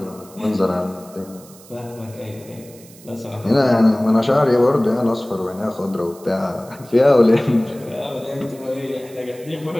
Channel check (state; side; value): noise; right; hiss, 22 dB below the sound